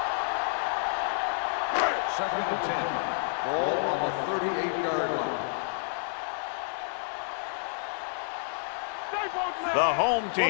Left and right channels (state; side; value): silent; right; 58 dB below the other